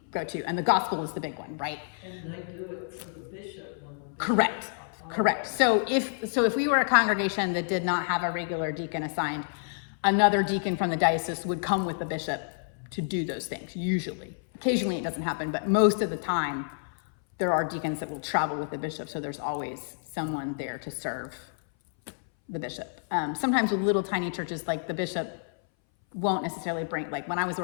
go-to, and the gospel is the big one, right? And they do it for the bishop when the bishop. Correct. So if we were a congregation that did not have a regular deacon assigned, another deacon from the diocese would come with the bishop to do those things, usually. Occasionally it doesn't happen, but most of the time there are deacons that will travel with the bishop, so there's always someone there to serve the bishop. Sometimes with little tiny churches, like the bishop won't necessarily bring, like when I was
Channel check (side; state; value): right; silent; 59 dB below the other